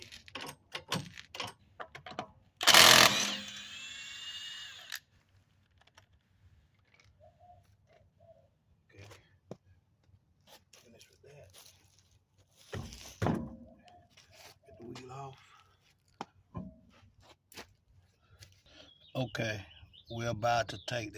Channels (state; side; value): identical; both; correlation 1.00